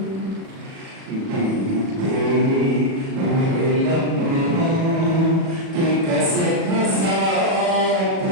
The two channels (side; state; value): left; late; 37 ms